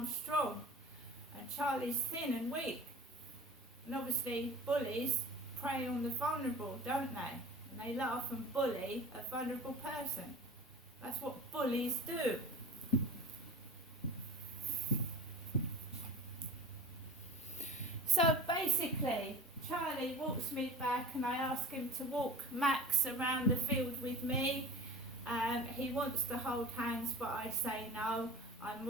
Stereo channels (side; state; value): both; normal; correlation 0.37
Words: strong. And Charlie's thin and weak. And obviously bullies prey on the vulnerable, don't they? And they laugh and bully a vulnerable person. That's what bullies do. So basically, Charlie walks me back and I ask him to walk Max around the field with me. He wants to hold hands, but I say no. I'm